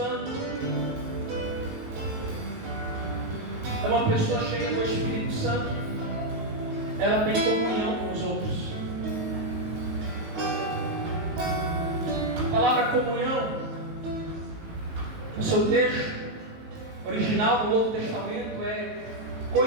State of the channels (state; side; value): late; left; 19 ms